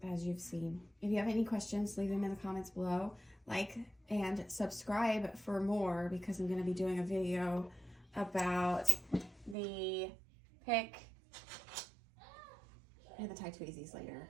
as you've seen. If you have any questions, leave them in the comments below. Like and subscribe for more, because I'm going to be doing a video about the pick and the tie tweezies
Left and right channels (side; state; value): left; drops out; at 9.6 s